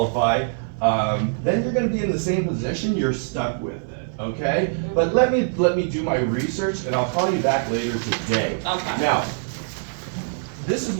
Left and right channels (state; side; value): silent; left; 63 dB below the other